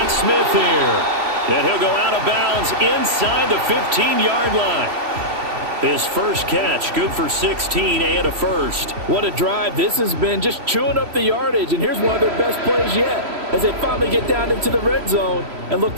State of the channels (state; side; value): late; left; 3.1 ms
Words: Smith here. And he'll go out of bounds inside the 15-yard line. His first catch, good for 16 and a first. What a drive this has been, just chewing up the yardage. And here's one of their best plays yet as they finally get down into the red zone and look